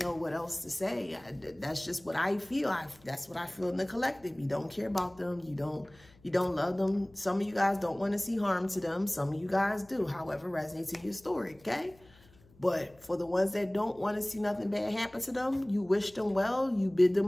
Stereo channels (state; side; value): noise; left; hum, 27 dB below the sound